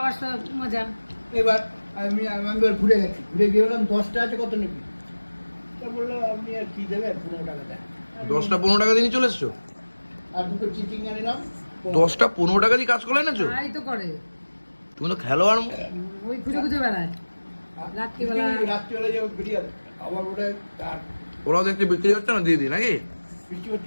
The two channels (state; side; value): inverted; both; correlation -1.00